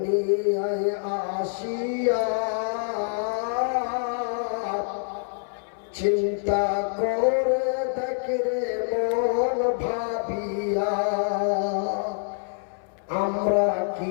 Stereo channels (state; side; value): silent; right; 58 dB below the other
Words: আসিয়া চিন্তা করে দেখরে মন ভাবিয়া আমরা